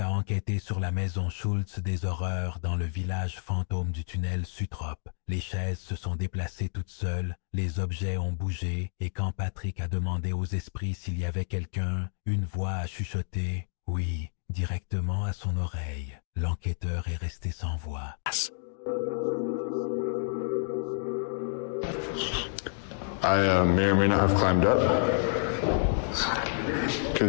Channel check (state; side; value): silent; right; digital silence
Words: a enquêté sur la maison Schultz des horreurs dans le village fantôme du tunnel Sutrop. Les chaises se sont déplacées toutes seules, les objets ont bougé, et quand Patrick a demandé aux esprits s'il y avait quelqu'un, une voix a chuchoté « oui » directement à son oreille. L'enquêteur est resté sans voix. I may or may not have climbed up